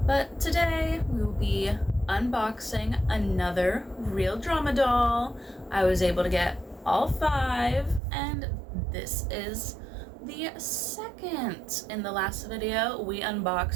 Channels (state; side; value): drops out; left; at 8.0 s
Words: But today we will be unboxing another real drama doll. I was able to get all 5, and this is the second. In the last video, we